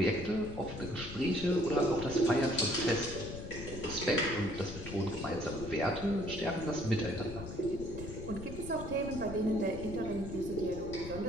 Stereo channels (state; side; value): noise; left; rumble, 10 dB below the sound